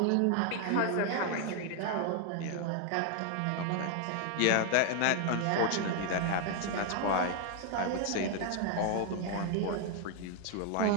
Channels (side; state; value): both; different; correlation 0.00